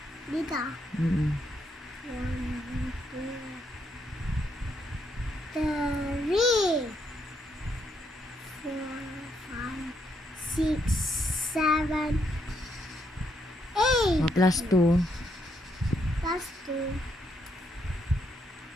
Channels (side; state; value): both; normal; correlation 0.76